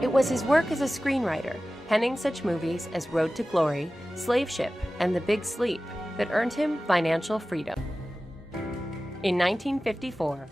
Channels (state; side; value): normal; both; correlation 0.96